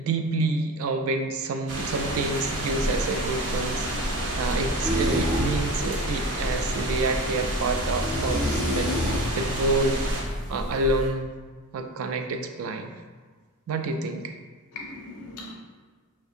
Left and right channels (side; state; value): both; normal; correlation 0.30